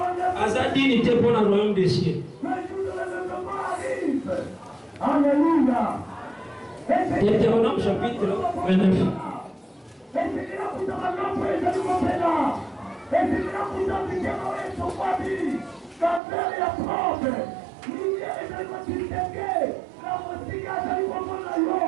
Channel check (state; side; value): drops out; left; at 16.2 s